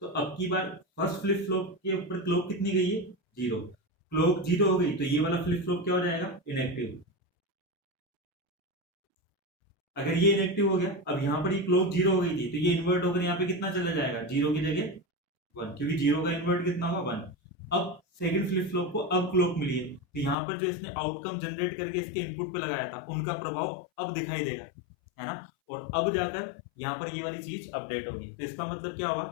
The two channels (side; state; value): right; drops out; at 20.4 s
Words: अब की बार फर्स्ट फ्लिप फ्लॉप के ऊपर क्लॉक कितनी गई है 0, क्लॉक 0 हो गई तो ये वाला फ्लिप फ्लॉप क्या हो जाएगा, इनएक्टिव। अगर ये इनएक्टिव हो गया, अब यहाँ पर ये क्लॉक 0 हो गई थी तो ये इन्वर्ट होकर यहाँ पे कितना चला जाएगा, 0 की जगह 1, क्योंकि 0 का इन्वर्ट कितना होगा 1। अब सेकंड फ्लिप फ्लॉप को अब क्लॉक मिली है तो यहाँ पर जो इसने आउटकम जनरेट करके इसके इनपुट पे लगाया था उनका प्रभाव अब दिखाई देगा, है ना। और अब जाकर यहाँ पर ये वाली चीज अपडेट होगी। तो इसका मतलब क्या